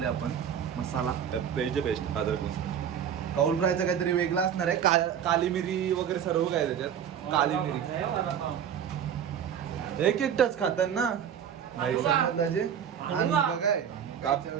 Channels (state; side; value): quieter; left; 8.7 dB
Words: आपण. मसाला बेस्ट कौल फ्रायचा काहीतरी वेगळा असणार आहे. काली मिरी वगैरे सर्व काय त्याच्यात. काली मिरी एक टच खातात ना भाई. समजलं बघाय